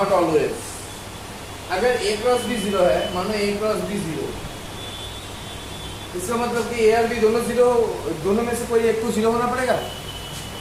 ऑलवेज। अगर a क्रॉस b जीरो है, मानो a क्रॉस b जीरो, इसका मतलब कि a और b दोनों जीरो, दोनों में से कोई एक तो जीरो होना पड़ेगा।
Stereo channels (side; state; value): both; identical; correlation 1.00